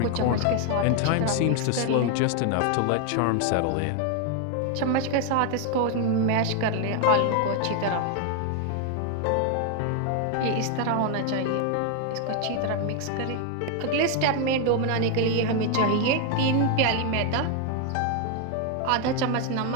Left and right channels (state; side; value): different; both; correlation 0.01